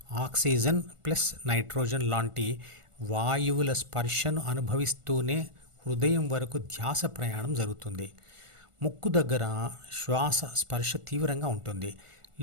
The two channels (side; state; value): left; late; 1.4 ms